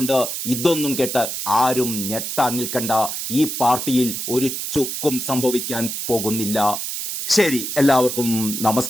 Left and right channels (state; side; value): noise; right; hiss, 4 dB below the sound